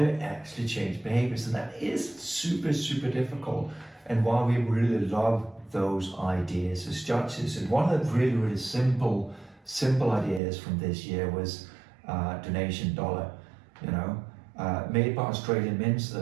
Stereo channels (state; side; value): drops out; left; at 10.4 s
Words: you actually change behaviors? And that is super difficult, and why we really love those ideas as judges. And one of the really simple ideas from this year was donation dollar, made by Australian mints,